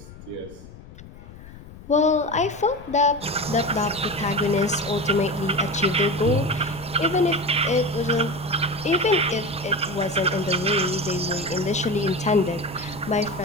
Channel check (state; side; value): noise; left; rumble, 18 dB below the sound